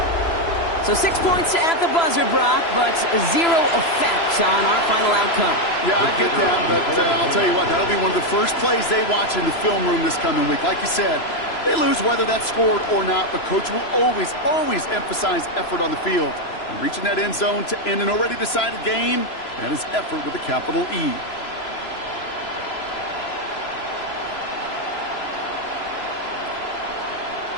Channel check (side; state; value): right; late; 3.0 ms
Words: So 6 points at the buzzer, Brock, but zero effect on our final outcome. Yeah, I get that, but I'll tell you what, that'll be one of the first plays they watch in the film room this coming week. Like you said, they lose whether that's scored or not, but Coach will always emphasize effort on the field. And reaching that end zone to end an already decided game, that is effort with a capital E.